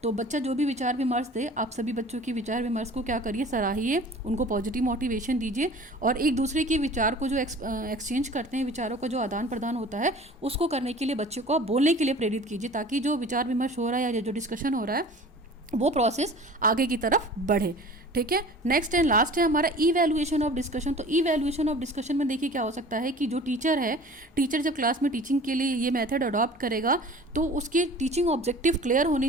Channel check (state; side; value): normal; both; correlation 0.44